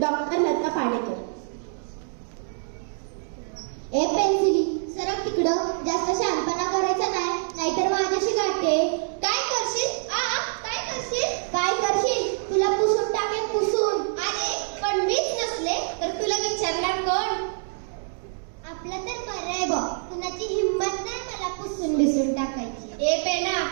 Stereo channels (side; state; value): left; silent; digital silence